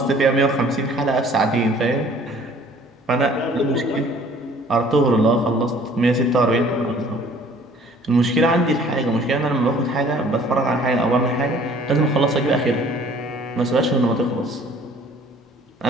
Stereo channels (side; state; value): both; normal; correlation 0.54